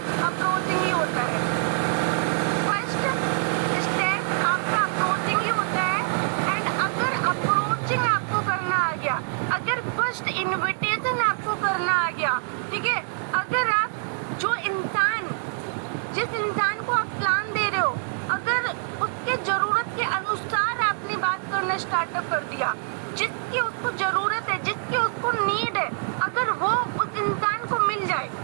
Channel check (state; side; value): silent; left; digital silence